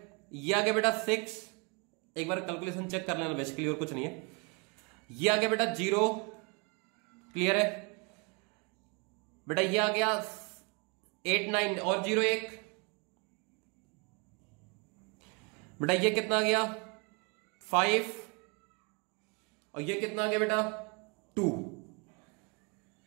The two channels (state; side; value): quieter; left; 32.5 dB